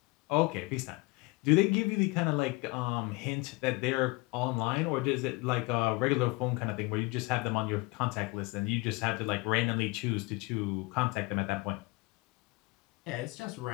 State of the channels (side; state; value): right; quieter; 24.0 dB